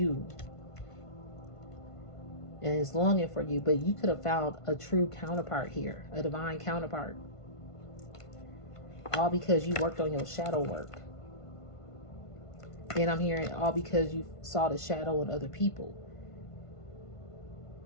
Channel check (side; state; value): right; late; 1.5 ms